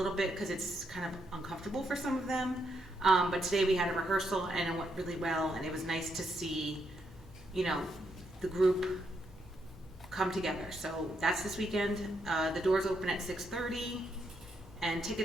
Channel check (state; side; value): normal; both; correlation 0.78